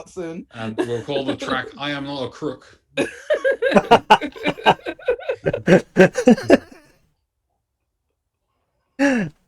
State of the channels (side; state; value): both; identical; correlation 1.00